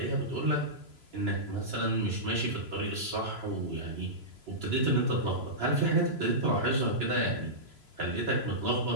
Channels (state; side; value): late; left; 3.0 ms